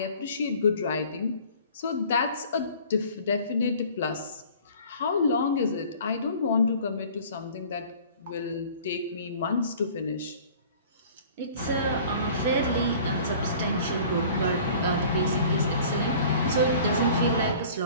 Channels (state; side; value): inverted; both; correlation -0.48